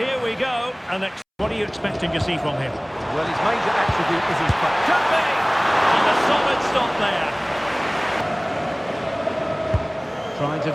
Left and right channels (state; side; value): identical; both; correlation 1.00